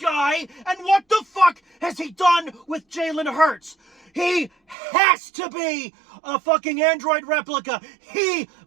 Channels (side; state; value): left; drops out; at 4.8 s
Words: guy, and what the fuck has he done with Jalen Hurts? He has to be a fucking android replica. He